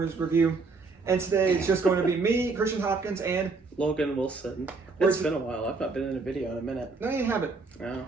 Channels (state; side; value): quieter; left; 4.1 dB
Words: review. And today it's just going to be me, Christian Hopkins, and Logan Wilson. It's been a while. I've not been in a video in a minute. No, you haven't.